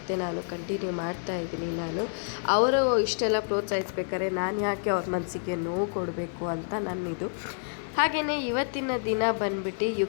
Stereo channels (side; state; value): right; silent; digital silence